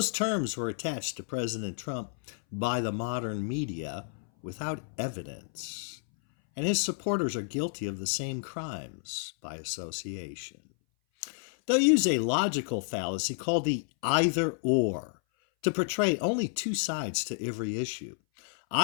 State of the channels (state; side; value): silent; right; 57 dB below the other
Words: terms were attached to President Trump by the modern media without evidence, and his supporters are guilty of the same crimes by association. They'll use a logical fallacy called the either-or to portray only two sides to every issue.